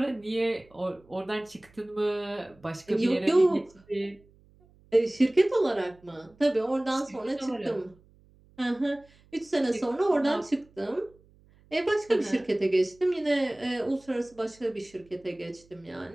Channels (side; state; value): right; noise; hum, 29 dB below the sound